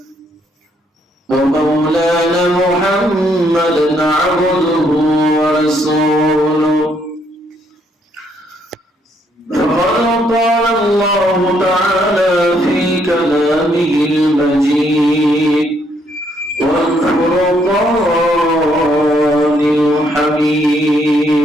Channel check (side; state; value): both; normal; correlation 0.71